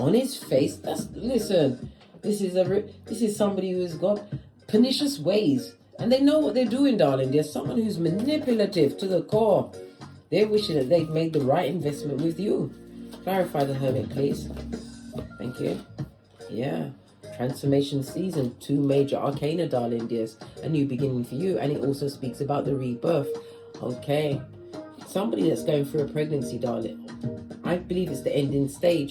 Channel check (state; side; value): identical; both; correlation 1.00